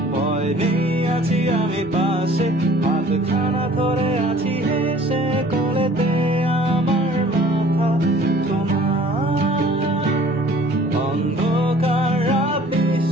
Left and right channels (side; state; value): right; noise; hum, 30 dB below the sound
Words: ভয় নেই, আছি আমি পাশে, হাতখানা ধরে আছি হেসে, কোলেতে আমার মাথা তোমার। অন্ধকার রাত